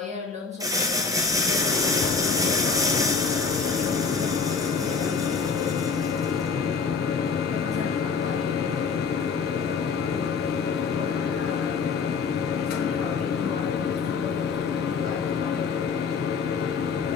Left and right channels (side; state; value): right; quieter; 5.2 dB